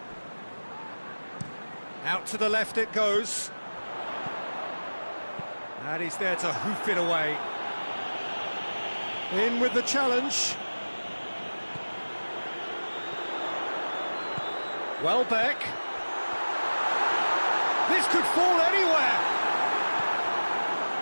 Out to the left it goes. And he's there to hoof it away. In with the challenge. Welbeck. This could fall anywhere.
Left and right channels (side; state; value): both; inverted; correlation -1.00